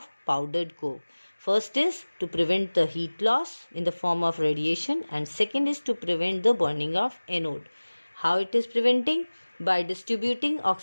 powdered coke. First is to prevent the heat loss in the form of radiation, and second is to prevent the burning of anode. How it is preventing? By distributing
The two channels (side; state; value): both; inverted; correlation -1.00